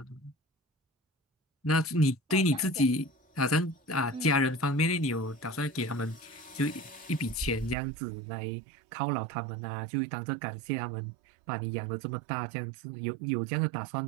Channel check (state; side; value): drops out; left; at 7.8 s